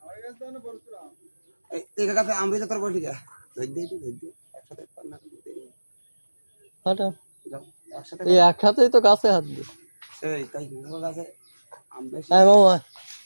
এই গাছে আমরিতে তোর বসে যা একসাথেই তো গাছে হাত দিই,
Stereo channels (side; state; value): both; inverted; correlation -1.00